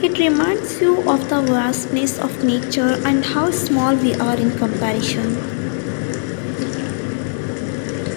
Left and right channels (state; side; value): silent; right; digital silence